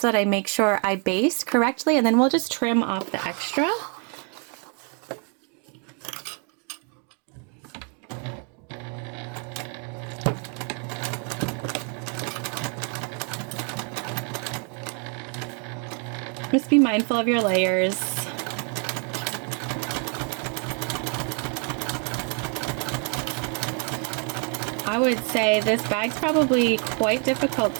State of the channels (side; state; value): left; quieter; 39.1 dB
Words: that I make sure I baste correctly, and then we'll just trim off the extra. Just be mindful of your layers. I would say this bag's probably quite difficult